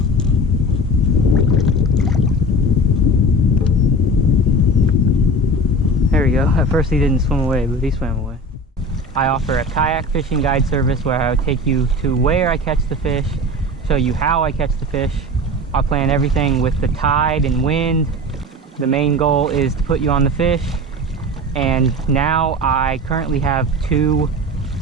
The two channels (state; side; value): normal; both; correlation 0.34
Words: There we go. At first he didn't swim away, but he swam away. I offer a kayak fishing guide service where I would take you to where I catch the fish, show you how I catch the fish. I plan everything with the tide and wind. The main goal is to put you on the fish. And now I currently have two